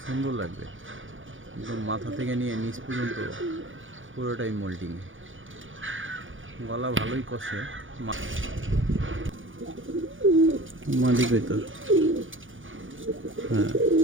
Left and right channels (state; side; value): late; left; 0.57 ms